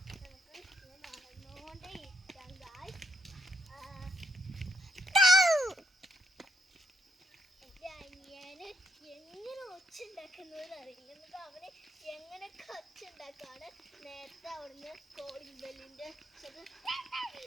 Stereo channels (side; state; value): both; normal; correlation 0.75